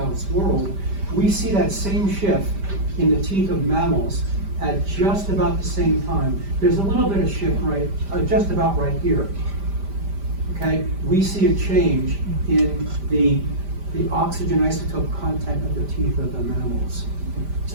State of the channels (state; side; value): late; left; 5.0 ms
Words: world. We see that same shift in the teeth of mammals at just about the same time. There's a little bit of shift just about right here. Okay, we see a change in the oxygen isotope content of the teeth of the mammals.